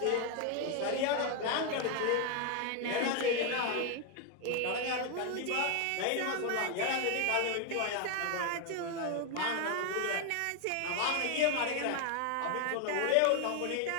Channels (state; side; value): different; both; correlation 0.01